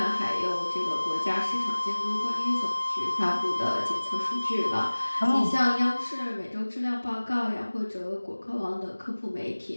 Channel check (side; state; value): both; inverted; correlation -1.00